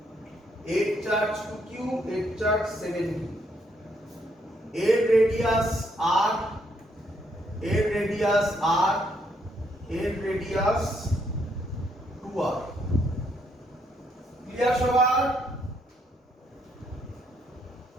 এর চার্জ 2q, এর চার্জ 7q, এর রেডিয়াস r, এর রেডিয়াস r, এর রেডিয়াস 2r। ক্লিয়ার সবার?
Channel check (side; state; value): both; normal; correlation 0.73